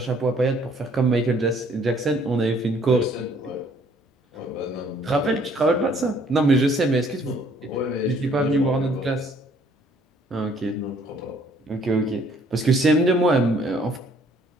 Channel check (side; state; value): both; normal; correlation 0.61